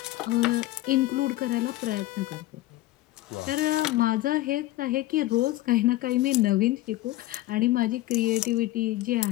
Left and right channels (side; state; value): right; quieter; 16.6 dB